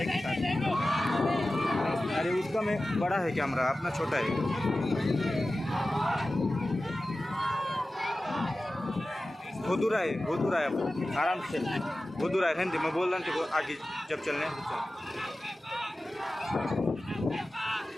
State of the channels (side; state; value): both; normal; correlation 0.95